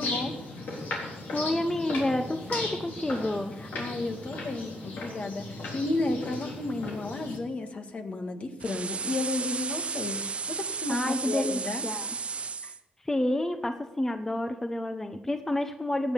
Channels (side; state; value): both; normal; correlation 0.70